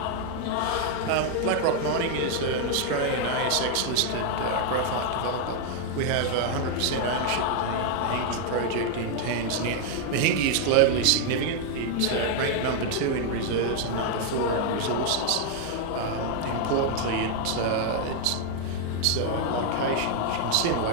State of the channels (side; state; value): both; different; correlation 0.00